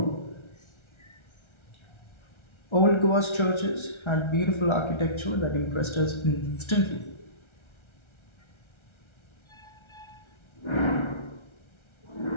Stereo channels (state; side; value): late; right; 1.3 ms